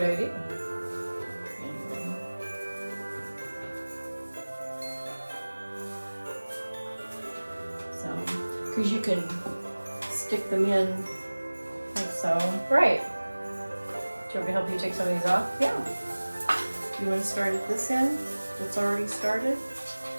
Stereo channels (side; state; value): both; inverted; correlation -1.00